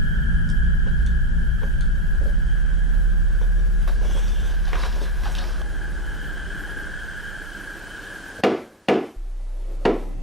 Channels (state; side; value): normal; both; correlation 0.11